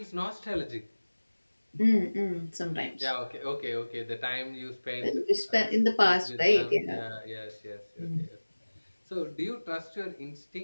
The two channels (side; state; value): both; inverted; correlation -1.00